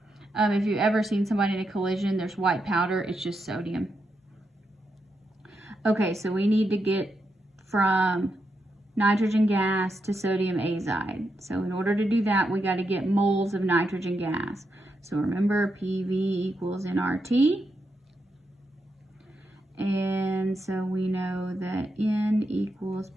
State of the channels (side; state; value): both; normal; correlation 0.84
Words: If you've ever seen somebody in a collision, there's white powder, it's just sodium. Okay, so we need to get from nitrogen gas to sodium azide. So in order to do that, we got to get moles of nitrogen gas. So remember, PV equals nRT. And so we know that N equals